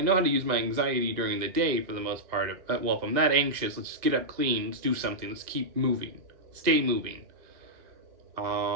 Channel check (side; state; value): left; late; 1.8 ms